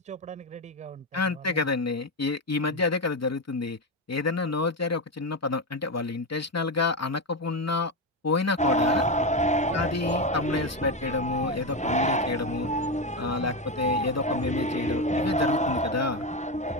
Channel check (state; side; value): normal; both; correlation 0.12